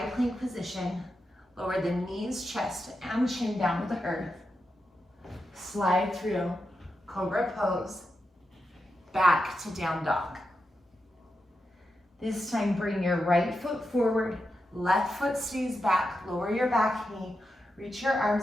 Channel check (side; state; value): both; normal; correlation 0.88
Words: plank position. Lower the knees, chest, and chin down to the earth. Slide through cobra pose, back to down dog. This time, bring your right foot forward, left foot stays back, lower your back knee, reach your